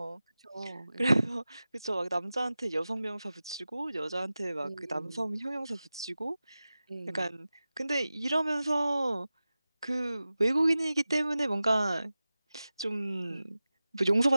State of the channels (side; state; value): both; inverted; correlation -0.95